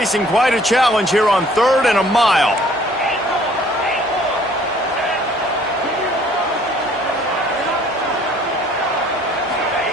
quite a challenge here on 3rd and a mile.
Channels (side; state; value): both; normal; correlation 0.57